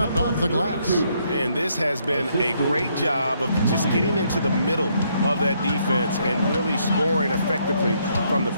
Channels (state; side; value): inverted; both; correlation -0.72